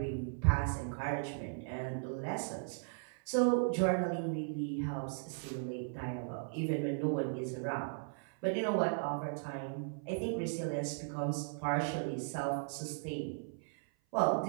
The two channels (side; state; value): left; silent; 53 dB below the other